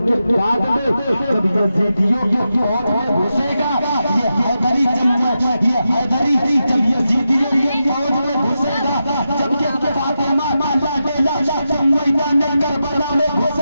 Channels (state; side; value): inverted; both; correlation -0.89